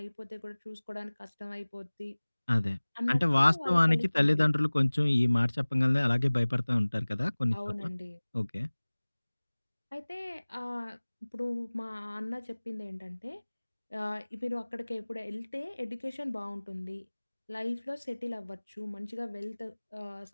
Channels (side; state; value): both; inverted; correlation -1.00